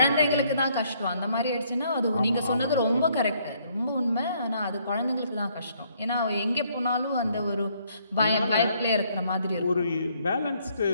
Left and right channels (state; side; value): inverted; both; correlation -0.67